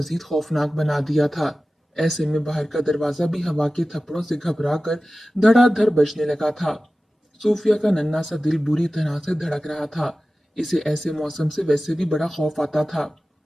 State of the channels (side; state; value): both; normal; correlation 0.96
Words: खौफनाक बना दिया था। ऐसे में बाहर का दरवाजा भी हवा के थप्पड़ों से घबरा कर धड़ाधड़ बजने लगा था। सूफिया का नन्हा सा दिल बुरी तरह से धड़क रहा था। इसे ऐसे मौसम से वैसे भी बड़ा खौफ आता था।